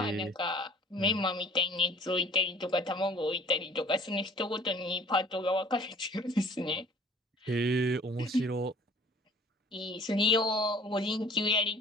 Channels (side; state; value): both; normal; correlation 0.50